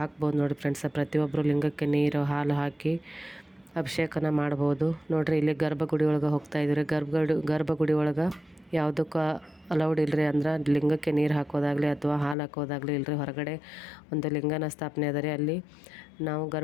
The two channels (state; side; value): drops out; right; at 12.4 s